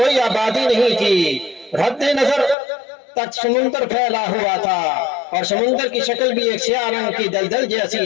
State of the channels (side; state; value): right; drops out; at 2.6 s